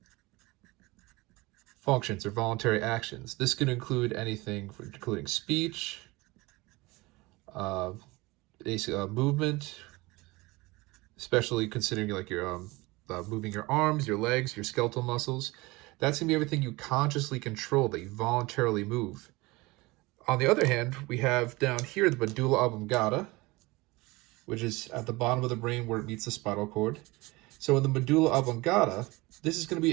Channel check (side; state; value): left; quieter; 22.6 dB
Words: functions or voluntary actions. This can include anything including speech, movement, especially considering like your moving your arms, your legs, your skeletal muscles. That's going to be everything you consciously control, that you voluntarily move. On the other hand, we have down here the medulla oblongata, which is at the bottom of the brain where it meets the spinal cord. So in the medulla oblongata, this is going to